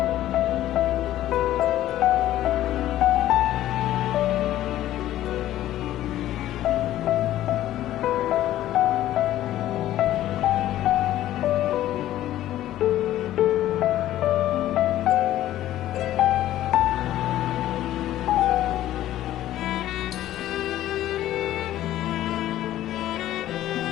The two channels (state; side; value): quieter; right; 13.5 dB